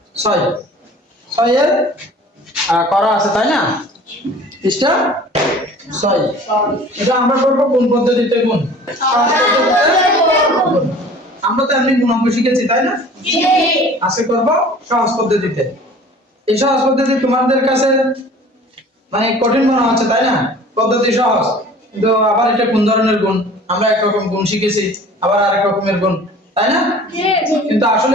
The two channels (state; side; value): normal; both; correlation 0.46